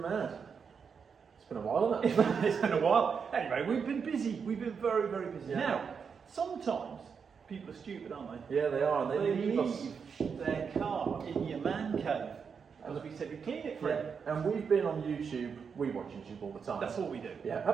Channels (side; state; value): left; quieter; 6.2 dB